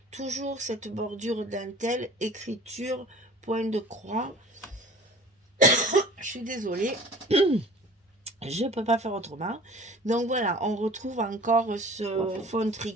Toujours cette bordure dentelle, écriture, point de croix. Je suis désolée. Je ne peux pas faire autrement. Donc voilà, on retrouve encore ce fond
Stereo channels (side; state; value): both; normal; correlation 0.46